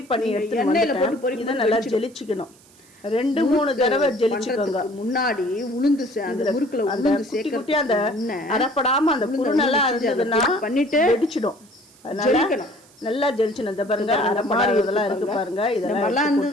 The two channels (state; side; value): noise; right; hiss, 27 dB below the sound